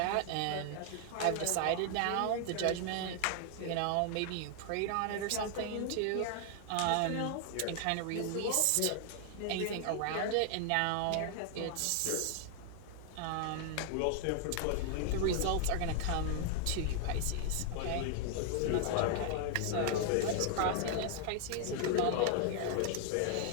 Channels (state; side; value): different; both; correlation 0.00